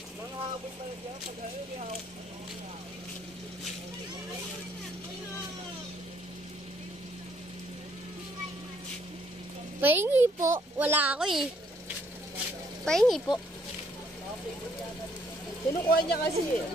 Pahingi po. Wala ako eh. Pahingi po. Kinukuha niya kasi eh.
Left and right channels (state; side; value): normal; both; correlation 0.67